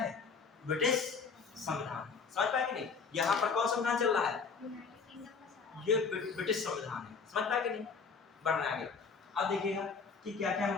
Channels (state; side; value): quieter; right; 5.3 dB